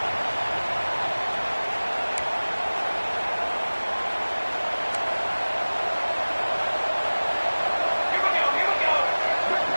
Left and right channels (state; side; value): inverted; both; correlation -1.00